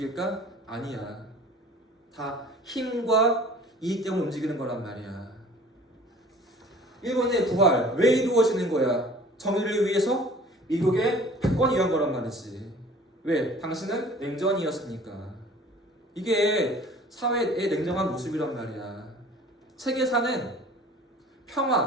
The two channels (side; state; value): both; normal; correlation 0.47